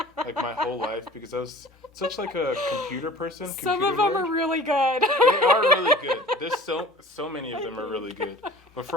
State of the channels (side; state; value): both; normal; correlation 0.44